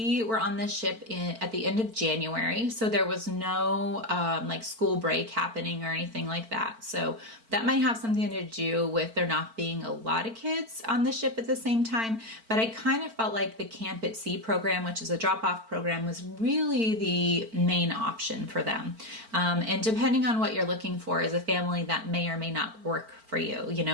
were on the ship at the end of January, so there was no like school break happening or anything like that. So that might have something to do with there not being a lot of kids on the ship at the same time. But I kind of felt like the Camp at Sea program, which is a drop-off program, was really the main option for them. And depending on what you're looking for as a family, that may or may not work for you. You know,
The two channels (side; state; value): left; late; 4.5 ms